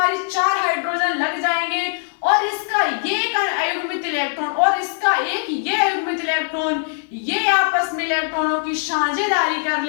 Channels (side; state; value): right; silent; digital silence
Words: 4 हाइड्रोजन लग जाएंगे और इसका ये एक अयुग्मित इलेक्ट्रॉन और इसका एक ये अयुग्मित इलेक्ट्रॉन, ये आपस में इलेक्ट्रॉनों की साझेदारी कर